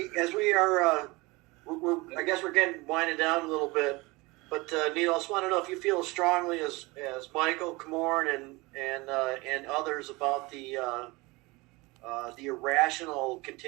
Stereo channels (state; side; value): quieter; left; 23.7 dB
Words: are, I guess we're getting winded down a little bit. But Neil, I just want to know if you feel as strongly as Michael Komorn and others about the irrational